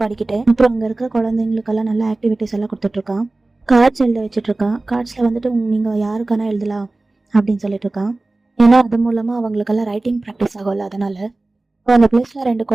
பாடிக்கிட்டே. அப்புறம் அங்க இருக்க குழந்தைங்களுக்கெல்லாம் நல்ல ஆக்டிவிட்டிஸ் எல்லாம் கொடுத்துட்டு இருக்கான். கார்ட்ஸ் எழுத வச்சுட்டு இருக்கான். கார்ட்ஸ்ல வந்துட்டு நீங்க யாருக்கான எழுதலாம் அப்படின்னு சொல்லிட்டு இருக்கான். ஏன்னா அது மூலமா அவங்களுக்கெல்லாம் ரைட்டிங் ப்ராக்டிஸ் ஆகும்ல, அதனால. அப்ப அந்த பிளேஸ்ல 2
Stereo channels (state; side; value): quieter; left; 3.0 dB